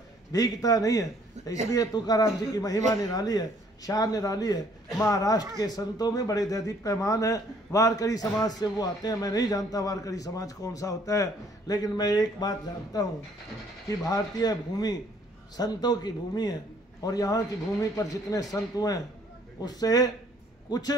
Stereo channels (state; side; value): normal; both; correlation 0.62